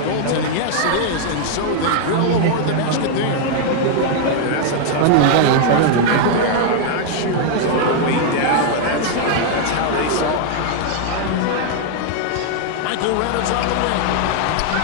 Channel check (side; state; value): both; different; correlation 0.00